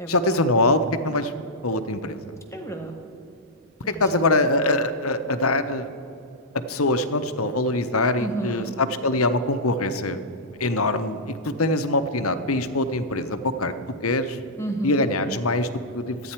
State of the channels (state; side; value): normal; both; correlation -0.11